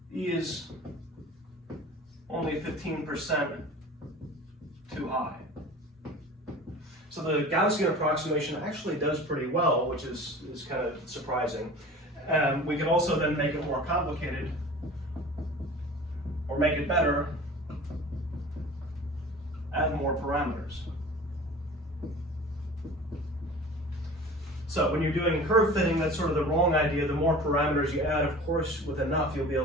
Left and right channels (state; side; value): normal; both; correlation 0.40